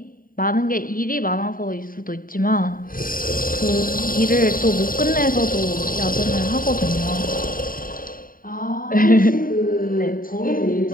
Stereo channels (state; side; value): late; right; 0.41 ms